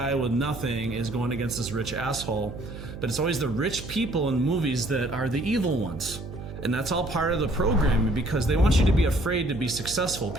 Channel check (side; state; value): right; noise; hum, 11 dB below the sound